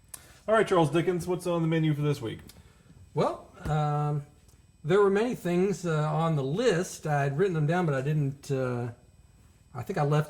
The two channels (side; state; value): both; identical; correlation 1.00